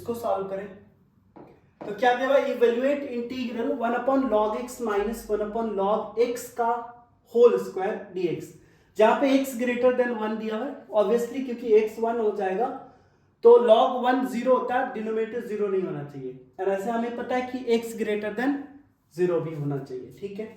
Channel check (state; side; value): identical; both; correlation 1.00